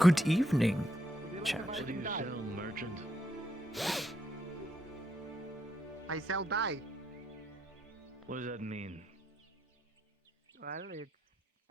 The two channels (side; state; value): both; normal; correlation 0.78